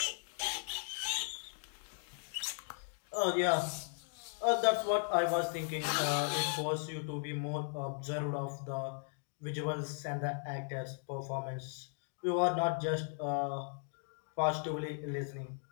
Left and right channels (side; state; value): right; silent; 53 dB below the other